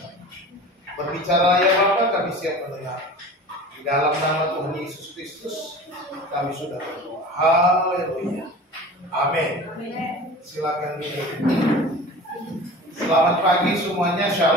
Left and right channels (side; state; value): both; normal; correlation 0.38